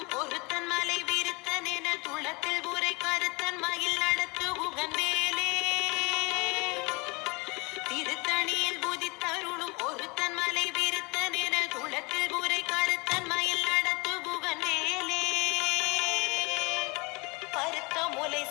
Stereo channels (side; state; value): right; quieter; 27.4 dB